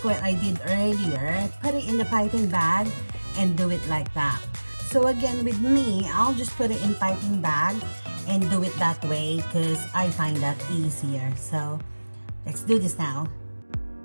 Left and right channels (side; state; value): both; inverted; correlation -1.00